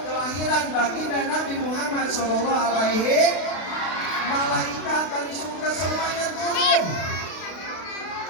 kelahiran baginda Nabi Muhammad SAW, malaikat dari surga semuanya turun.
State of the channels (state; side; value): late; right; 32 ms